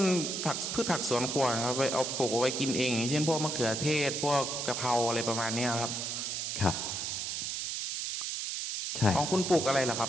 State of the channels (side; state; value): right; noise; hiss, 3 dB below the sound